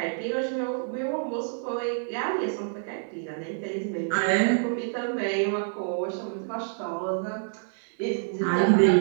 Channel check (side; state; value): left; silent; digital silence